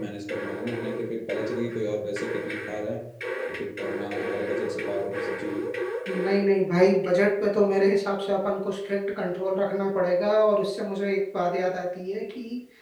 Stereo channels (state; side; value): identical; both; correlation 1.00